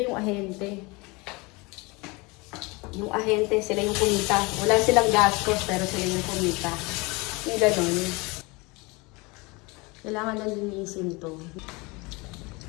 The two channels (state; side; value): quieter; right; 25.9 dB